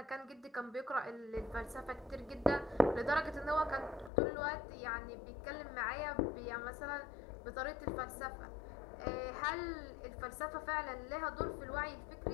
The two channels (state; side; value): drops out; right; at 4.1 s